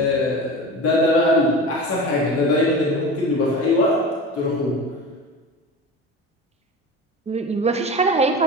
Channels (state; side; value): normal; both; correlation 0.31